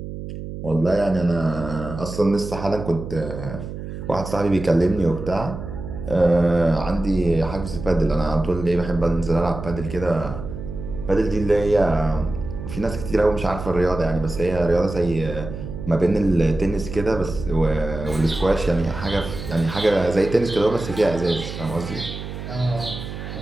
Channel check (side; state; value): right; noise; hum, 9 dB below the sound